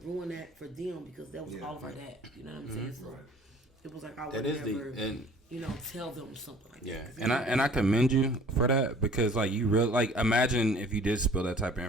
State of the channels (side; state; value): both; normal; correlation 0.51